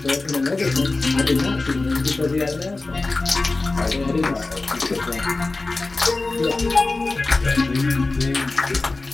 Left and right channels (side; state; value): right; quieter; 3.4 dB